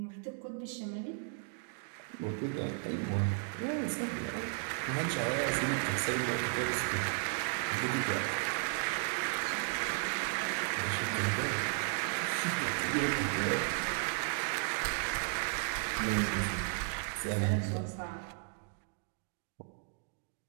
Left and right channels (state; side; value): silent; left; 55 dB below the other